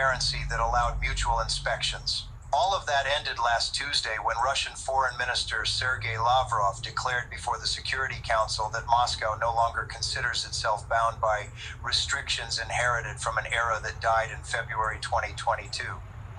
that allowed mutual inspections. All of that ended last Tuesday when Russian Foreign Minister Sergei Lavrov declared before the Security Council that Moscow no longer considers itself bound by restrictions inherited from an era that died in February 2022.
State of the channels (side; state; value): both; identical; correlation 1.00